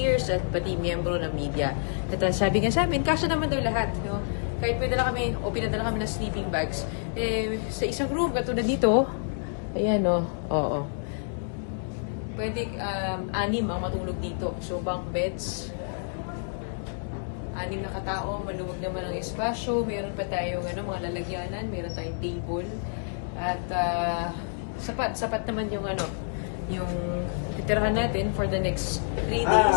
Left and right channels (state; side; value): silent; right; digital silence